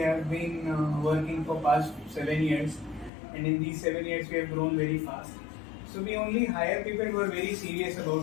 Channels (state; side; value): drops out; right; at 3.1 s